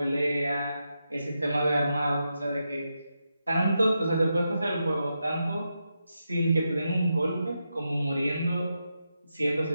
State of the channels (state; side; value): inverted; both; correlation -0.86